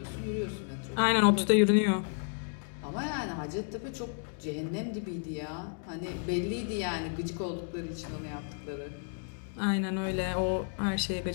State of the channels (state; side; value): silent; right; 56 dB below the other